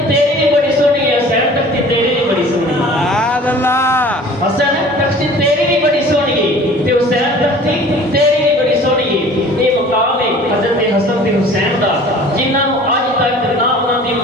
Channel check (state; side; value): normal; both; correlation 0.46